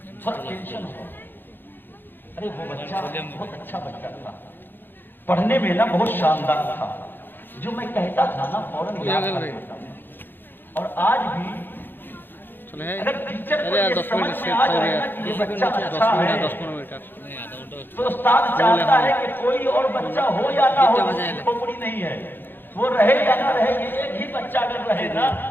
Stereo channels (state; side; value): late; right; 0.097 ms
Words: تھوڑا ٹینشن ہوا، ارے وہ بچہ بہت اچھا بچہ تھا، پڑھنے میں نا بہت شاندار تھا، جو میں کہتا تھا نا فوراً یاد کر لیتا تھا، اور آج بھی اگر ٹیچر کو یہ سمجھ میں آ جائے نا کہ یہ بچہ اچھا ہے تو استاد چاہتا ہے کہ کوئی اور بچہ ہو یا نہ ہو، کھوپڑی نہیں ہے، وہ رہے یا نہ رہے، یہ ایک ہی بچہ اگر رہے